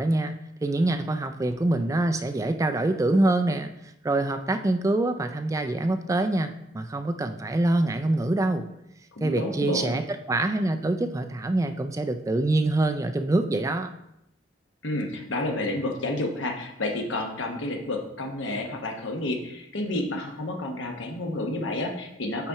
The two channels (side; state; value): both; normal; correlation 0.72